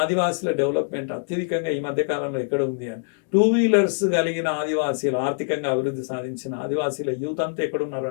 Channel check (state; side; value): silent; right; digital silence